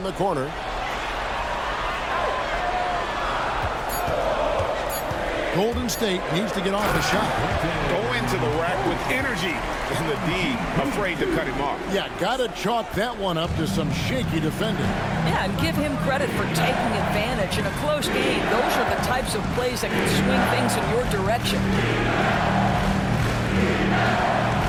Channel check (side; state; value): both; identical; correlation 1.00